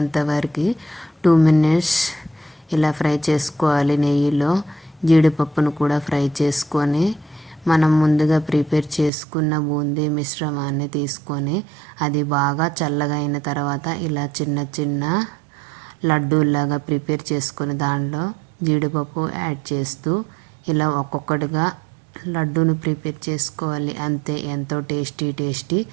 వరకు 2 మినిట్స్ ఇలా ఫ్రై చేసుకోవాలి. నెయ్యిలో జీడిపప్పును కూడా ఫ్రై చేసుకొని మనం ముందుగా ప్రిపేర్ చేసుకున్న బూందీ మిశ్రమాన్ని తీసుకొని అది బాగా చల్లగా అయిన తర్వాత ఇలా చిన్న చిన్న లడ్డూలాగా ప్రిపేర్ చేసుకొని దానిలో జీడిపప్పు యాడ్ చేస్తూ ఇలా ఒక్కొక్కటిగా లడ్డూను ప్రిపేర్ చేసుకోవాలి. అంతే, ఎంతో టేస్టీ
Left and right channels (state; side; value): drops out; left; at 9.1 s